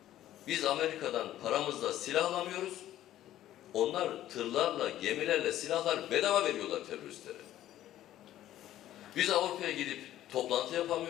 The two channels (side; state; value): right; quieter; 13.1 dB